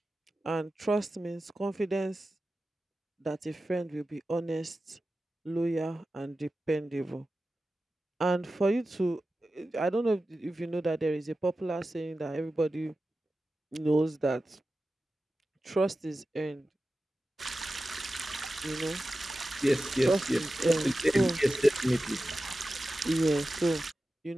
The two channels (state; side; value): normal; both; correlation 0.94